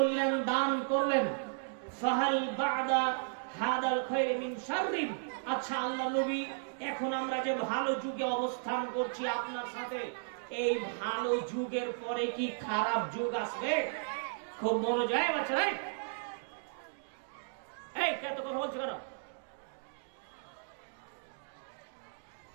দান করলেন। ফাহাল বা'দা হাদাল খায়র মিন শাররিন, আচ্ছা আল্লাহ নবী, এখন আমরা যে ভালো যুগে অবস্থান করছি আপনার সাথে, এই ভালো যুগের পরে কি খারাপ যুগ আসবে? খুব মনোযোগ বাচ্চারা, এই কত কথা বলছো কেন?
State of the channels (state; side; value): silent; left; digital silence